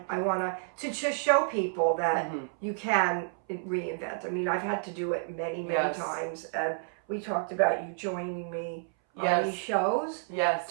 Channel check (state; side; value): silent; left; 58 dB below the other